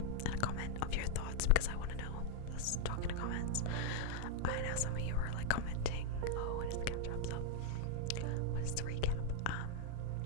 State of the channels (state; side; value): different; both; correlation 0.00